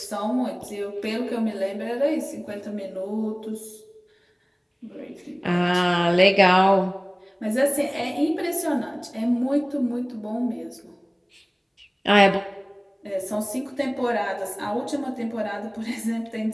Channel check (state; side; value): identical; both; correlation 1.00